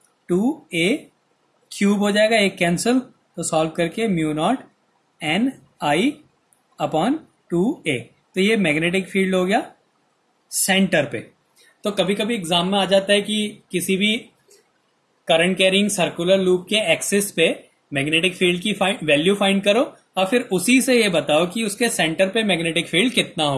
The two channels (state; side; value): identical; both; correlation 1.00